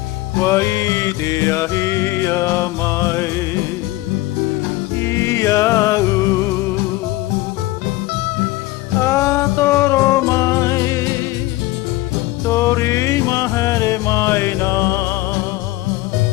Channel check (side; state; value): right; quieter; 18.2 dB